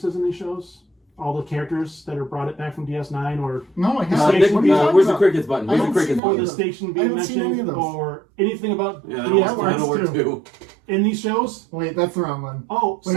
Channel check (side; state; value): left; drops out; at 6.2 s